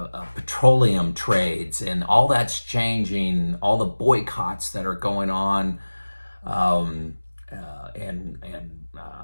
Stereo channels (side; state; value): both; inverted; correlation -1.00